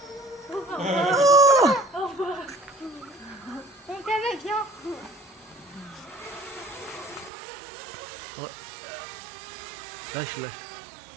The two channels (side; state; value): left; drops out; at 7.3 s